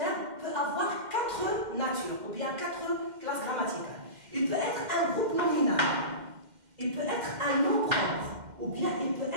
peut avoir quatre natures, ou bien quatre classes grammaticales. Il peut être un groupe nominal, il peut être un nom propre, ou bien il peut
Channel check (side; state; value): left; late; 2.1 ms